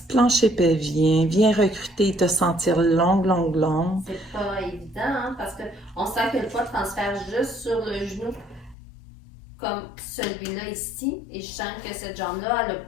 plancher pelvien, viens recruter et te sentir longue. C'est pas évident, hein, parce qu'on sent que le poids transfère juste sur le genou, comme celui-là ici, et je sens que cette jambe-là, elle n'a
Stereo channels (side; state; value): right; drops out; at 8.8 s